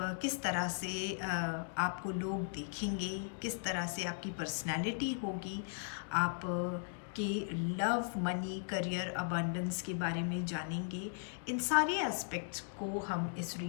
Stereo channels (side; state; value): right; silent; digital silence